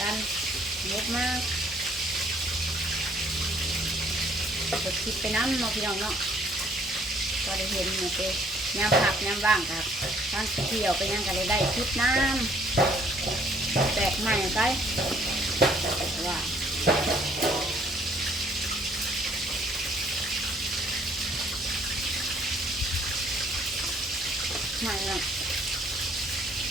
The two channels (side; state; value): both; normal; correlation 0.62